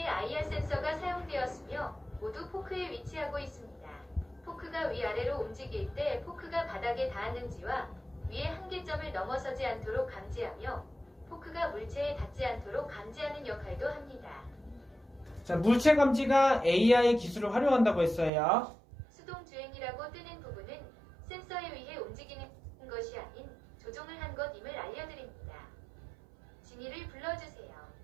IR 센서가 사용되었으며 모두 포크에 위치하고 있습니다. 포크가 위아래로 움직일 때 포크가 바닥에 닿았는지와 위의 한계점을 넘어서지 않도록 감지하며 포크가 물체에 닿지 않도록 감지하는 역할도 합니다. 자, 물체 감지가 AI 기술을 활용한다고 했어요. 수동주행이라고 뜨는 부분은 센서에 의해 움직이는 것이 아닌 조종을 한 것임을 알려드립니다. 진이를 불러주세요.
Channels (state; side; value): drops out; left; at 18.3 s